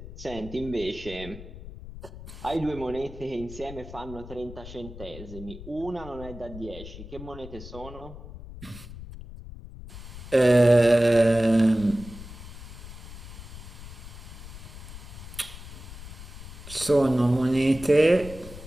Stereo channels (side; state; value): left; noise; rumble, 13 dB below the sound